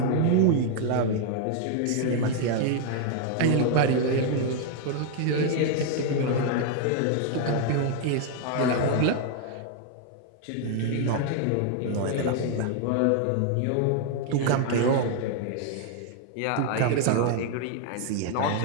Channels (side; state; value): both; different; correlation 0.00